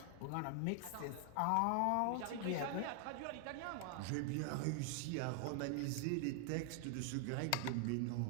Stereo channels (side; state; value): both; different; correlation 0.00